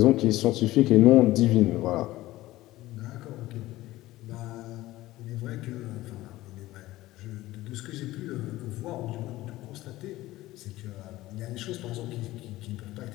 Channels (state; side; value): quieter; right; 17.0 dB